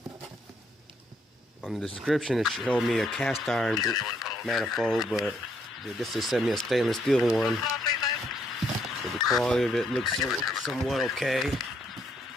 On the description it showed me a cast iron manifold, but this just sent me a stainless steel one. So the quality of it looks somewhat okay.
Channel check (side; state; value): both; normal; correlation 0.72